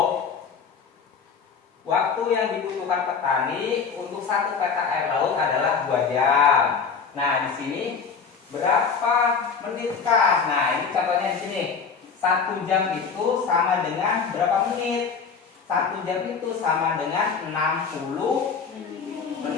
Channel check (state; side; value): quieter; right; 5.8 dB